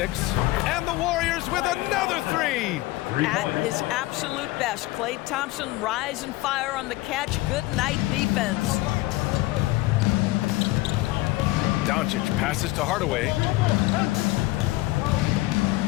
And the Warriors with another 3. At his absolute best, Klay Thompson rise and fire on the catch. Good night defense. Doncic passes to Hardaway.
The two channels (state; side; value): quieter; right; 18.9 dB